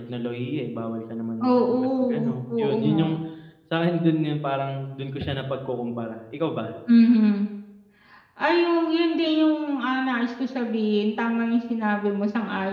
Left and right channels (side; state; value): both; identical; correlation 1.00